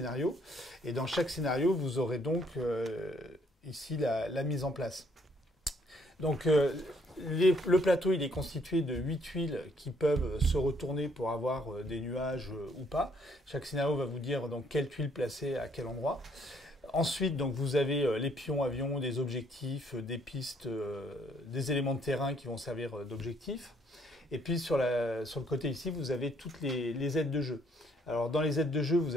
et dans chaque scénario, vous aurez donc ici la mise en place. Donc le plateau il est constitué de 8 tuiles qui peuvent se retourner pour avoir des nuages ou pas. Chaque scénario va vous dire donc quelle tuile placer à quel endroit. Ensuite donc vous avez les pions avions, des objectifs, des pistes, des éléments de terrain qui vont servir d'objectifs. Et puis sur le côté ici vous avez toutes les aides de jeu. Alors dans les aides de jeu, vous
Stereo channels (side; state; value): both; normal; correlation 0.67